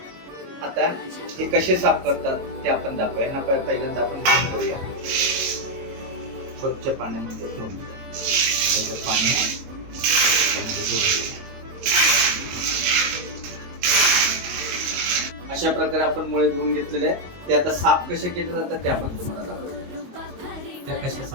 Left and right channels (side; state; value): left; late; 22 ms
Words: आता हे कसे साफ करतात ते आपण दाखवूया ना. पहिल्यांदा आपण घेऊया स्वच्छ पाण्यामध्ये ठेवून त्याच्यात पाणी अशा प्रकारे आपण मुळे धुवून घेतलेले आहे. ते आता साफ कसे केले जातात ते आपण तुम्हाला दाखवतो. त्या कशा